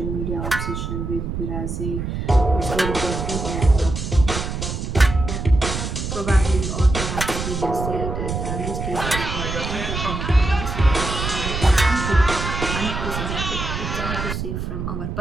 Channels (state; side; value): noise; right; rumble, 4 dB below the sound